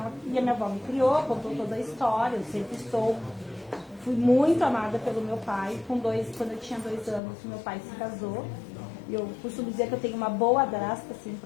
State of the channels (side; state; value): right; drops out; at 7.2 s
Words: E a minha avó me criou, contou toda a história, eu sempre fui muito amada pelo meu pai. Quando eu tinha 2 anos, meu pai se casou. E eu costumo dizer que eu tenho uma boa madrasta, assim,